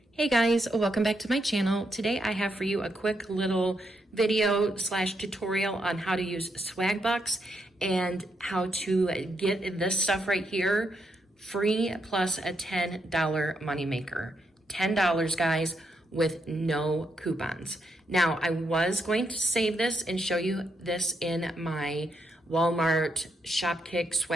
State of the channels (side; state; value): both; normal; correlation 0.80